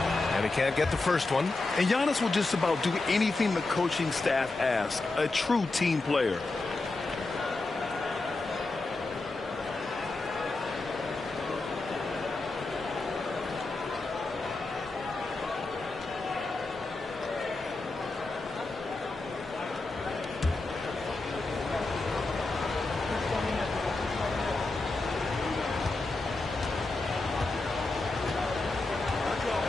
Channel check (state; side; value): quieter; right; 3.3 dB